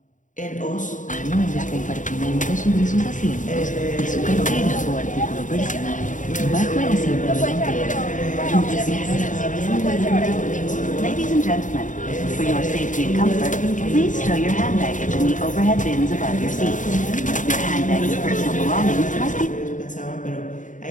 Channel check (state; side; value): late; right; 0.37 ms